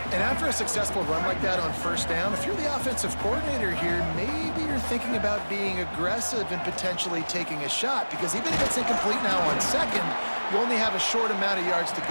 And after a successful run like that on 1st down, if you're the offensive coordinator here, maybe you're thinking about being aggressive and potentially taking a shot, because even if it's incomplete now on 2nd, you only have a short amount of yards to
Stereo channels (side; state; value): both; inverted; correlation -1.00